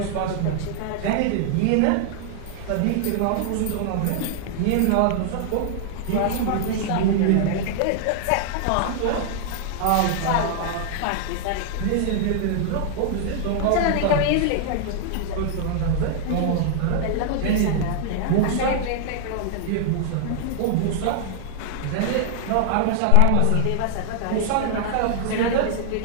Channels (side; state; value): both; different; correlation 0.00